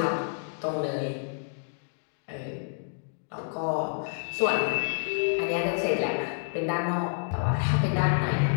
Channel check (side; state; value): right; silent; digital silence